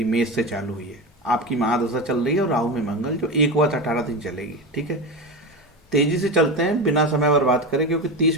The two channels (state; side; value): normal; both; correlation 0.21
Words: मेष से चालू हुई है। आपकी महादशा चल रही है और राहु में मंगल जो 1 वर्ष 18 दिन चलेगी। ठीक है, तेजी से चलते हैं, बिना समय बर्बाद करें, क्योंकि